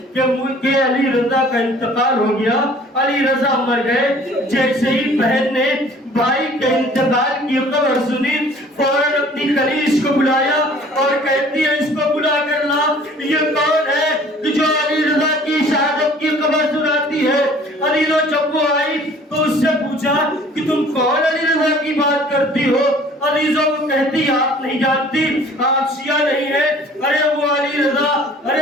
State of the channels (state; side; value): normal; both; correlation 0.52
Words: کہ علی رضا کا انتقال ہو گیا, علی رضا مر گئے. جیسے ہی بہن نے بھائی کے انتقال کی خبر سنی فوراً اپنی کنیز کو بلایا اور کہتی ہے اس کو بلا کر لا. یہ کون ہے جو علی رضا کی شہادت کی خبر سناتی ہے؟ علی رضا جب وہ آئی تو اس سے پوچھا کہ تم کون علی رضا کی بات کرتی ہو؟ علی رضا کو کہتی آپ نہیں جانتی, آپ شیعہ نہیں ہیں. ارے وہ علی رضا, ارے